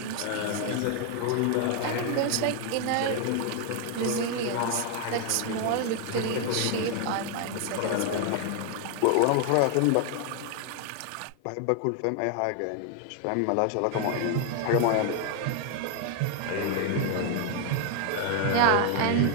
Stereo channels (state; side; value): different; both; correlation 0.00